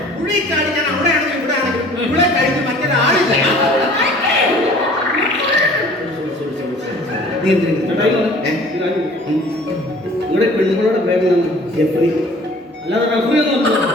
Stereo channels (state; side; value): normal; both; correlation 0.49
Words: പുള്ളിക്കാട് ഞാൻ അവിടെ ആണെങ്കിലും ഇവിടെ ആണെങ്കിലും ഇവിടെ കഴിഞ്ഞ് മറ്റൊരാളില്ല. നിങ്ങളുടെ പെണ്ണുങ്ങളുടെ പേരിലാണ് ജെഫ്രി, അല്ലാതെ റഫറി ഒന്നും